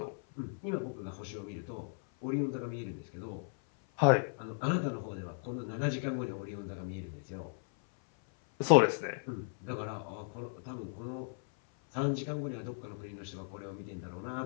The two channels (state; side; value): silent; right; 54 dB below the other